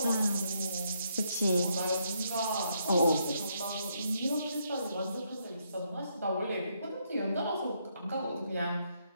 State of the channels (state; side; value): inverted; both; correlation -0.75